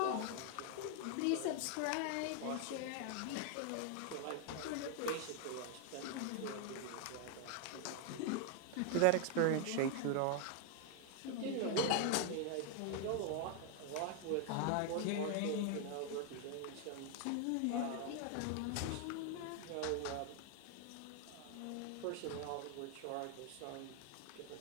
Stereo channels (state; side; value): different; both; correlation 0.01